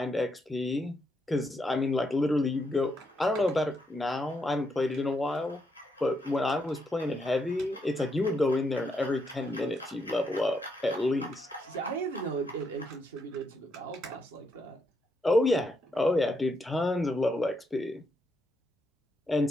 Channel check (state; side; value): normal; both; correlation 0.79